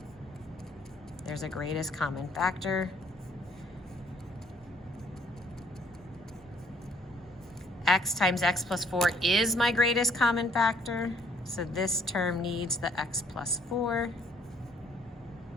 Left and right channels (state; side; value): normal; both; correlation 0.63